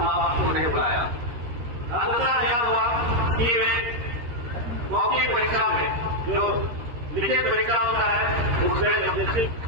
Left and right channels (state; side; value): late; left; 13 ms